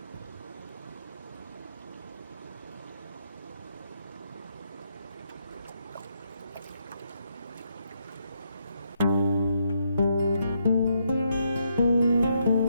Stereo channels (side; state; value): both; inverted; correlation -0.77